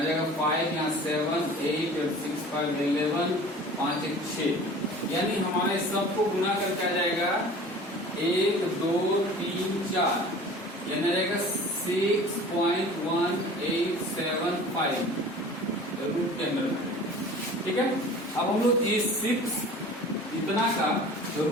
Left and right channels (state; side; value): normal; both; correlation 0.43